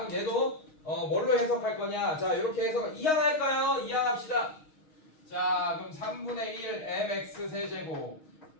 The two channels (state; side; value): late; right; 6.4 ms